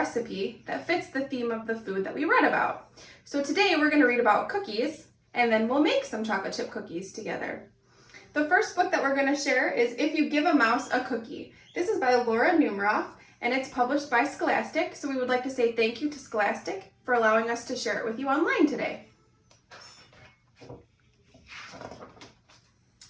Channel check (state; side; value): identical; both; correlation 1.00